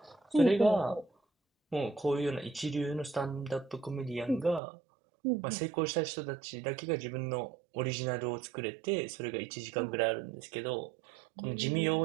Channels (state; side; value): drops out; left; at 4.6 s